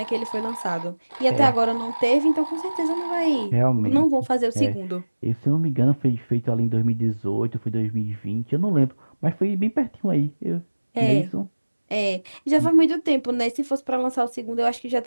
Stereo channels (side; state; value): both; inverted; correlation -1.00